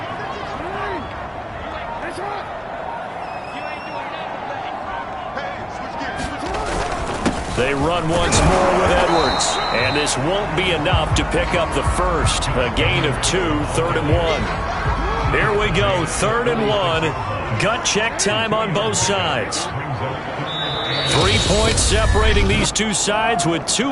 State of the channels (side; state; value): both; identical; correlation 1.00